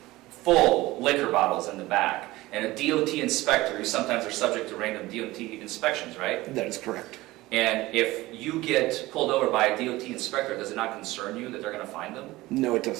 full liquor bottles in the back, and a DOT inspector, who sometimes are subject to random DOT inspections, right? That is correct. And if you get pulled over by a DOT inspector, does it not concern you that they're going to find them? No, it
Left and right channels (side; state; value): left; quieter; 18.8 dB